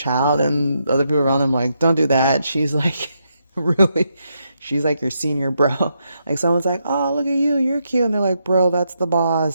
and other people around them like, don't do that. She's like, really, she's like your senior bro. Like someone's like, oh, look at you, you're cute. And they're like, bro, that's the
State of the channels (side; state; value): both; inverted; correlation -0.81